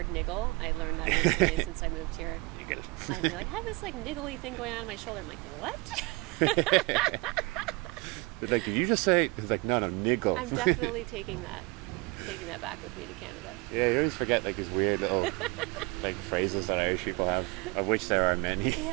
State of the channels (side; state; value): left; quieter; 25.8 dB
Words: niggle. I learned that recently since I moved here. Niggle. I'd be like, I have this like niggly thing going on in my shoulder. I'm like, what? But like, did you just say? It's like, no, niggle. I'm definitely taking that back with me to Canada. Yeah, you always forget like these weird little like phrases that Irish people have, of which there are many.